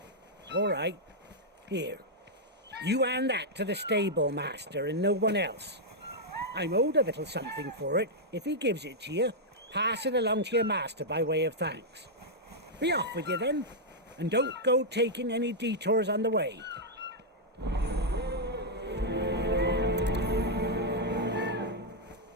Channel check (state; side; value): normal; both; correlation -0.05